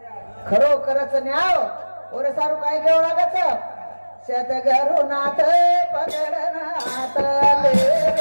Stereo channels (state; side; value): inverted; both; correlation -1.00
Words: खरो करच न्याव ओरे सारू काय घेऊ लागत शेत घरू नाथ पगड नाथ ले